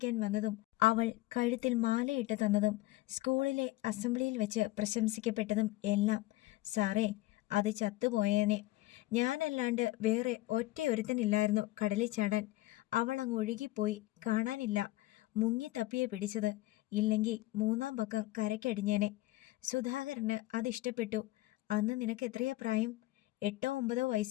വന്നതും അവൾ കഴുത്തിൽ മാലയിട്ട് തന്നതും സ്കൂളിലെ അസംബ്ലിയിൽ വെച്ച് പ്രശംസിക്കപ്പെട്ടതും എല്ലാം. സാറേ, അത് ചത്തുപോയേനെ. ഞാനല്ലാണ്ട് വേറെ ഒറ്റയൊരുത്തനില്ലായിരുന്നു കടലിൽ ചാടാൻ. അവൾ അങ്ങ് ഒഴുകിപ്പോയി. കാണാനില്ല. മുങ്ങി തപ്പിയെ പിടിച്ചത്. ഇല്ലെങ്കിൽ 3-ാം പക്കം കരയ്ക്കടിഞ്ഞേനെ. സുധാകരന് അതിഷ്ടപ്പെട്ടു. അന്ന് നിനക്ക് എത്രയാ പ്രായം? 8-9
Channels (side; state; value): right; quieter; 18.2 dB